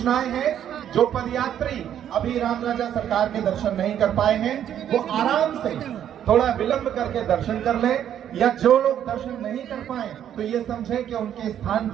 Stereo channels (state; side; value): quieter; left; 10.1 dB